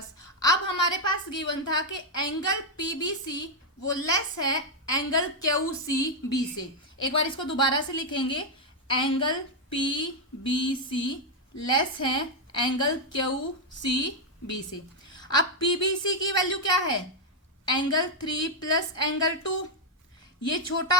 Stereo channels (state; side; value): normal; both; correlation 0.00